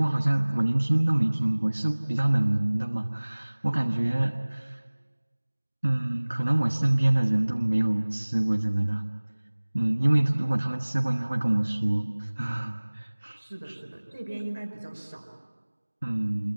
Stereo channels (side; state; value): both; inverted; correlation -1.00